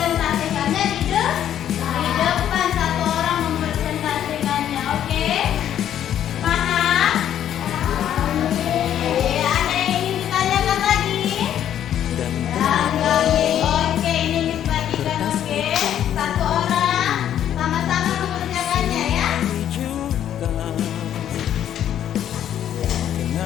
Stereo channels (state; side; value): quieter; right; 10.5 dB